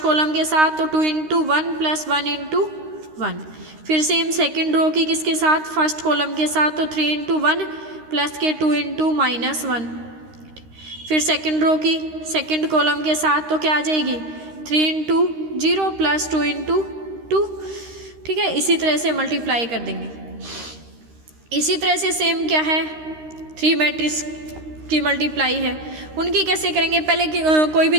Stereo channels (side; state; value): left; late; 13 ms